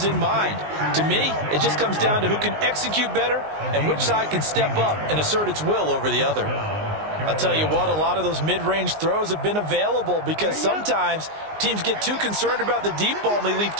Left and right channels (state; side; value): late; left; 19 ms